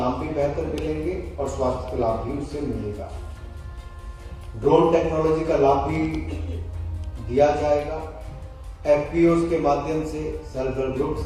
भी बेहतर मिलेंगे और स्वास्थ्य का लाभ भी उससे मिलेगा। ड्रोन टेक्नोलॉजी का लाभ भी दिया जाएगा। एफपीओस के माध्यम से, सेल्फ हेल्प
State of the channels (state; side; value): identical; both; correlation 1.00